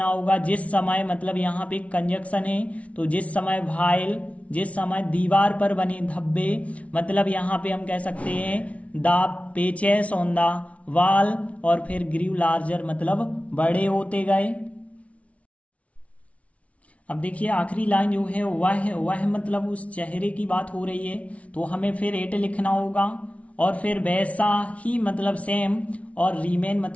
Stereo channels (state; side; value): late; right; 0.065 ms